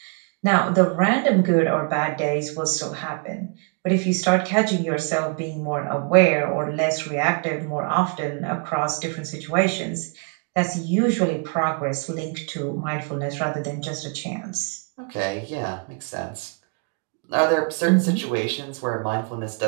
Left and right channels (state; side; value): quieter; left; 38.4 dB